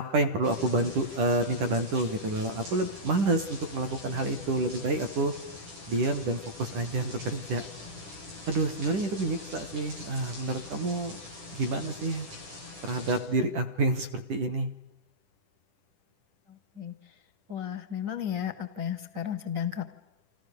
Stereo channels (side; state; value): left; late; 10 ms